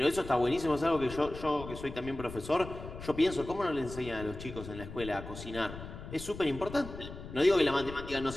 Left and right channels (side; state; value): left; noise; rumble, 11 dB below the sound